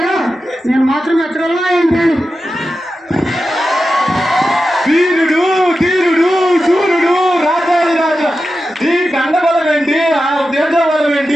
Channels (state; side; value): normal; both; correlation 0.91